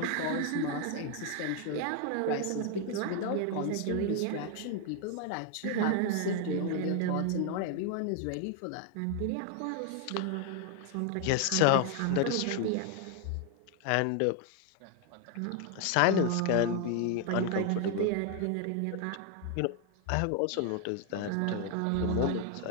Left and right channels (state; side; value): different; both; correlation 0.00